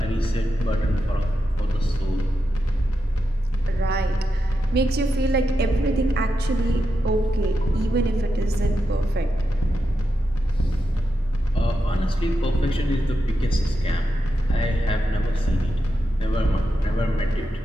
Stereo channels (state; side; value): normal; both; correlation 0.87